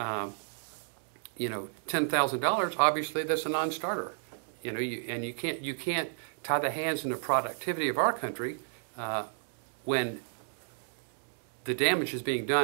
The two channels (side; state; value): left; silent; digital silence